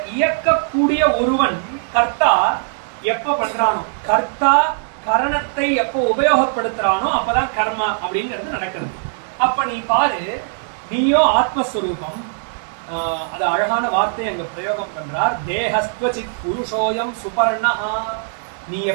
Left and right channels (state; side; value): silent; left; digital silence